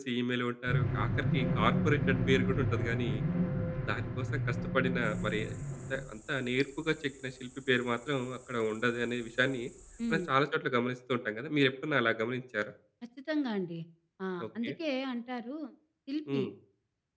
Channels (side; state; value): both; identical; correlation 1.00